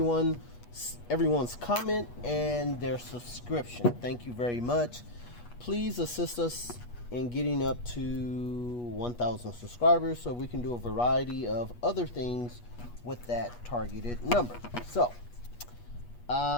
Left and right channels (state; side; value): late; right; 8.3 ms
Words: comment and their subscription. Thank you very much. Please assist us in getting up to 1,000 subscribers so we can do a variety of other things with that targeted number. So